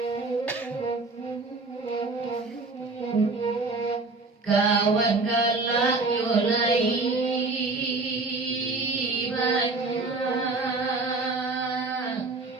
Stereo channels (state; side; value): quieter; left; 3.5 dB